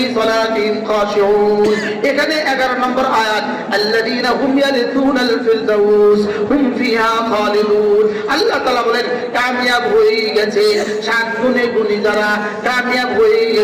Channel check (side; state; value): both; identical; correlation 1.00